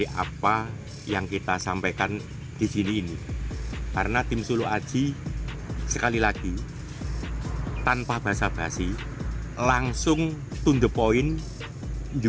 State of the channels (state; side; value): identical; both; correlation 1.00